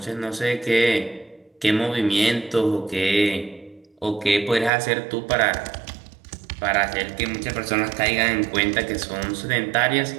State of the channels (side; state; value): left; drops out; at 4.7 s